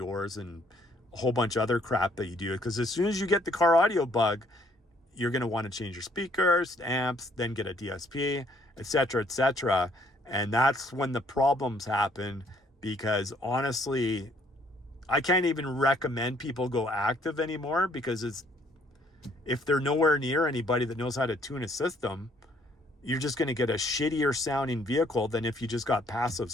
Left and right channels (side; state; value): both; normal; correlation 0.64